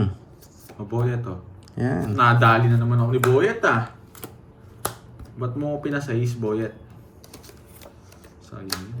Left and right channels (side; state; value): both; identical; correlation 1.00